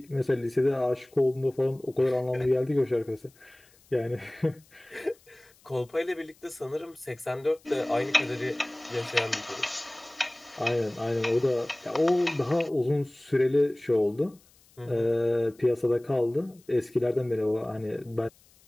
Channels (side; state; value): left; noise; hiss, 30 dB below the sound